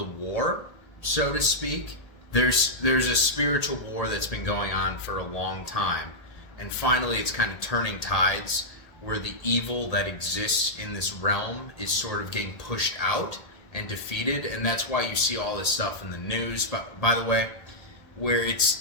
war, so to speak. There's a spiritual war that's been going on for a long time, and finally it's kind of turning tides where the evil that exists in this realm is sort of getting pushed out and defeated, and that's why you see all this stuff in the news, by the way, where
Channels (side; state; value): right; late; 1.8 ms